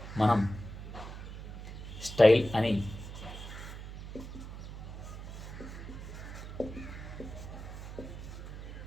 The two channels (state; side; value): noise; right; hum, 10 dB below the sound